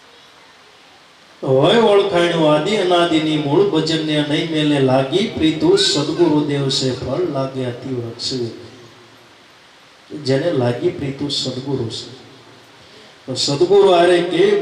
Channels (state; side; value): identical; both; correlation 1.00